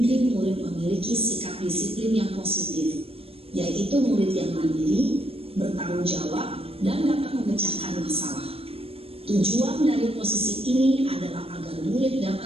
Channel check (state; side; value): late; left; 0.28 ms